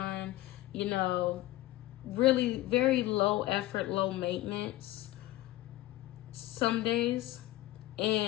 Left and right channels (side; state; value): right; quieter; 16.6 dB